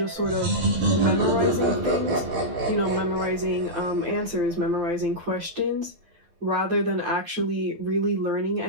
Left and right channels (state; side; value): late; left; 12 ms